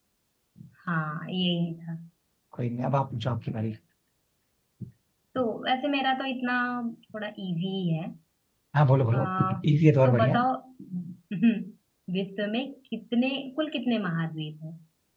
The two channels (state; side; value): identical; both; correlation 1.00